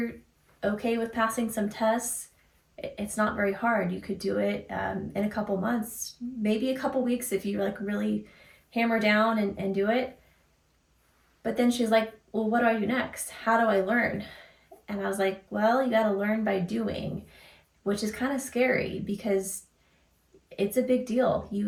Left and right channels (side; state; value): both; identical; correlation 1.00